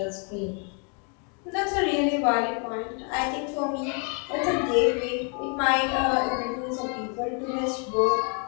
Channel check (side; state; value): right; quieter; 38.5 dB